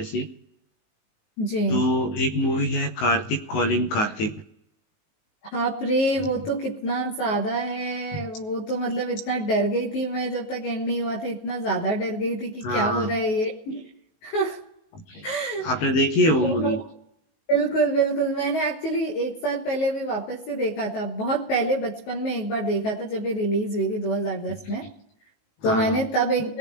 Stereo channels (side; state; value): right; late; 19 ms